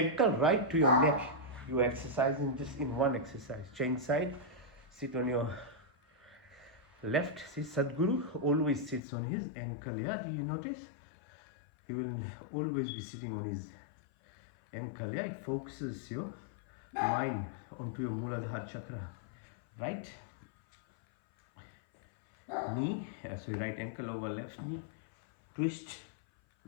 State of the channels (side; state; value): right; drops out; at 9.0 s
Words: right to your neck, you're exercising just in one exercise. Change side. Sit on your left. See, Sadhguru always sits on his ankle. Yeah, do you notice? He will always be sitting on his ankle. Yeah, it focuses your mind onto your Muladhara chakra. Right knee, so right ankle over left knee. Twist.